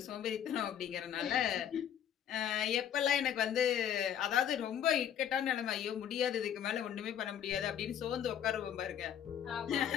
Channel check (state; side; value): quieter; right; 9.6 dB